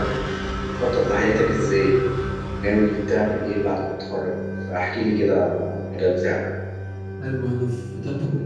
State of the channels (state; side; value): identical; both; correlation 1.00